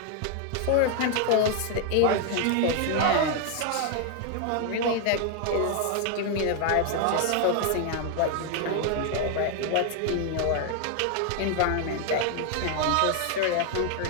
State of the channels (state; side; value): different; both; correlation 0.00